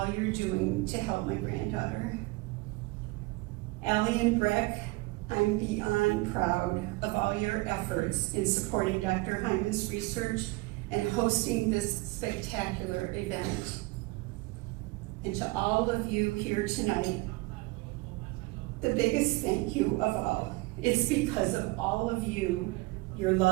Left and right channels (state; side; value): quieter; left; 23.1 dB